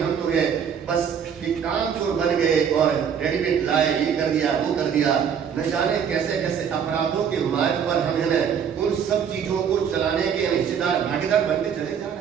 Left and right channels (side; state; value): left; quieter; 7.6 dB